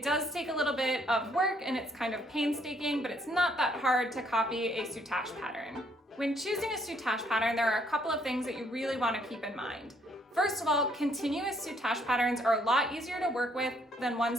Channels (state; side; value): normal; both; correlation 0.68